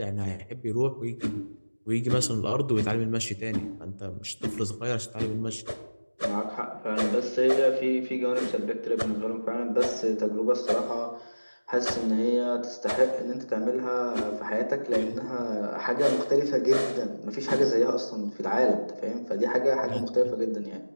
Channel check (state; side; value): inverted; both; correlation -1.00